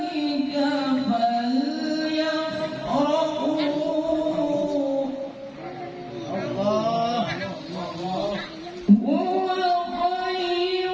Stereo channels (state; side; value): identical; both; correlation 1.00